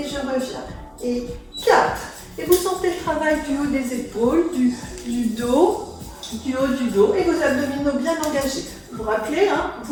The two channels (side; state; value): both; identical; correlation 1.00